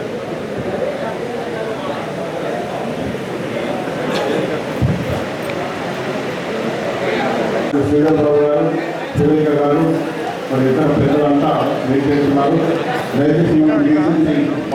శ్రీధర్రావు గారు, సురేఖ గారు, మరి ఇతర ప్రజలంతా వెయిట్ చేస్తున్నారు. దయచేసి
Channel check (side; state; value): both; identical; correlation 1.00